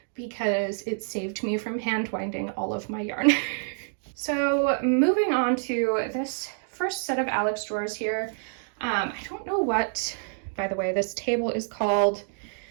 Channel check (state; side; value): silent; left; digital silence